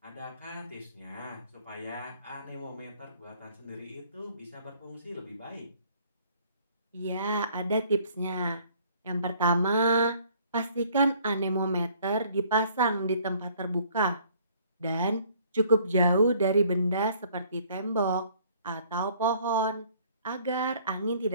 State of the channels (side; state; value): both; inverted; correlation -0.58